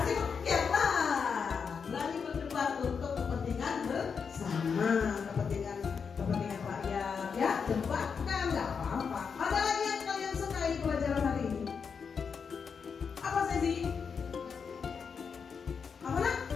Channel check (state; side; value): quieter; right; 6.1 dB